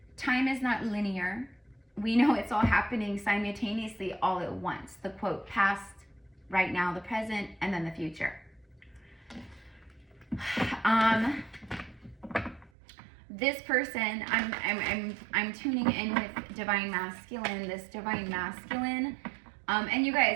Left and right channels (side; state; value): left; drops out; at 12.7 s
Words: time is not linear. We know it's all happening simultaneously all at once. The quote, past, right now, the present, and then the future. This person, I'm tuning in with divine masculine, this divine masculine. And you